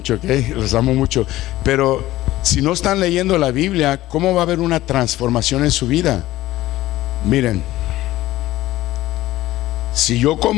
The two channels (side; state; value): right; quieter; 16.2 dB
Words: ¿ok? Los amo mucho, pero si no están leyendo la Biblia, ¿cómo va a haber una transformación en su vida? Miren, si yo